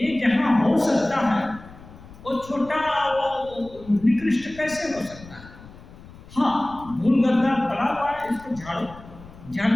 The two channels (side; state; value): left; noise; rumble, 19 dB below the sound